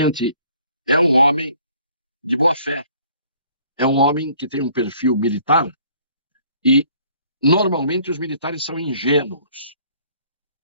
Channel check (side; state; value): both; inverted; correlation -0.58